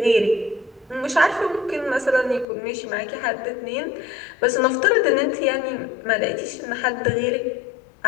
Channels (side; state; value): right; drops out; at 2.5 s